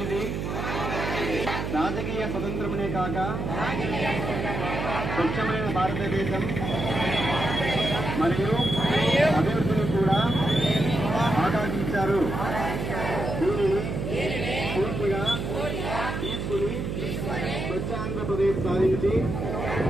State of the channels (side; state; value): right; noise; hum, 3 dB below the sound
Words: రాజకీయ స్వతంత్రమునే కాక స్వచ్ఛమైన భారతదేశం మరియు అభివృద్ధిని కూడా ఆకాంక్షించారు. దీనిని పూర్తిగా తీసుకుని స్వచ్ఛ ఆంధ్రప్రదేశ్ సాధించి